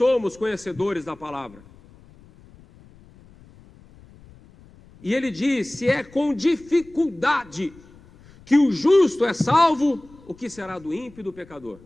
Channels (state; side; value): noise; left; rumble, 25 dB below the sound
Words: conhecedores da palavra. E ele diz, se é com dificuldade que o justo é salvo, o que será do ímpio e do pecador?